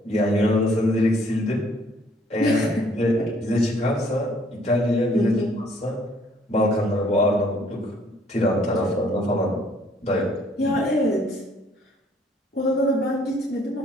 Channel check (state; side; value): normal; both; correlation 0.62